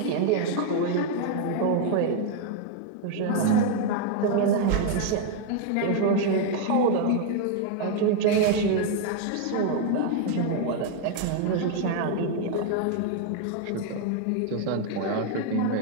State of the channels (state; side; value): different; both; correlation 0.00